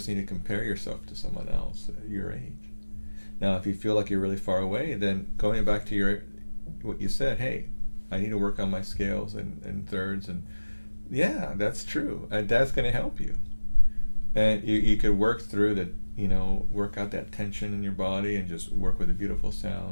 need to compare yourself to someone else at your age. Now, if you feel like you're really far away, then going back to what you said, hey, I need to work on my scales and thirds, and yeah, that's true. And that's going to help you. And you could work through the, work out that tension in your body and just work with a beautiful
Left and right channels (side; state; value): both; inverted; correlation -1.00